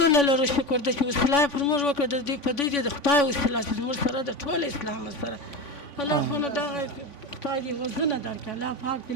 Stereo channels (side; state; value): right; late; 3.5 ms